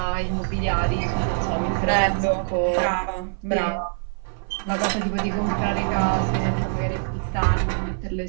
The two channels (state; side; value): silent; left; 58 dB below the other